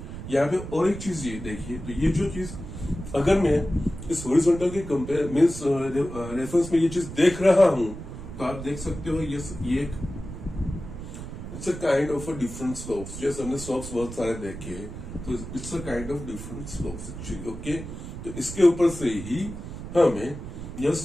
यहाँ पे और एक चीज ये देखिए, तो ये जो चीज अगर मैं इस हॉरिजॉन्टल के कंपेयर मीन्स रेफरेंस में ये चीज देख रहा हूं तो आप देख सकते हो यस ये एक it's a kind of a different slopes. जैसे हमने स्लोप्स बहुत सारे देखे, तो it's a kind of different slopes actually okay. तो इसके ऊपर से ही हमें यस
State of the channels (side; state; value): right; noise; rumble, 10 dB below the sound